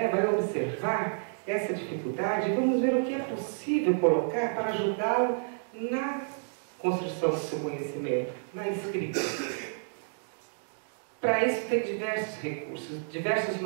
vai observar essa dificuldade e vamos ver o que é possível colocar para ajudá-lo na construção do seu conhecimento, na escrita. Para isso tem diversos recursos, diversos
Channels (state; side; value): silent; left; digital silence